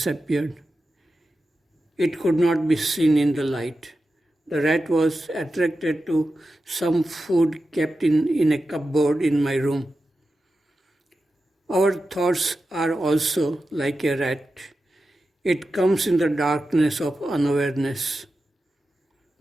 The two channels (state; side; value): normal; both; correlation 0.92